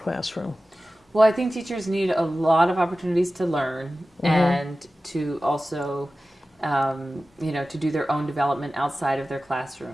Well, I think teachers need a lot of opportunities to learn and to also, to do their own development outside of their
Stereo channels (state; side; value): normal; both; correlation 0.95